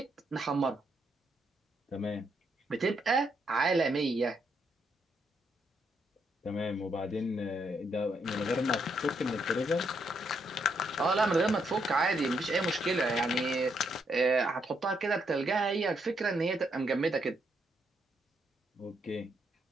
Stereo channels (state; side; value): normal; both; correlation 0.76